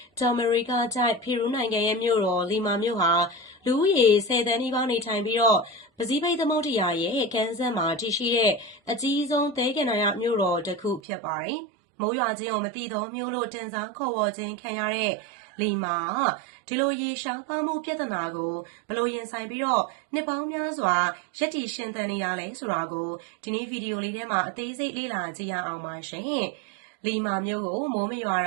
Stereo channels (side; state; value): left; drops out; at 11.0 s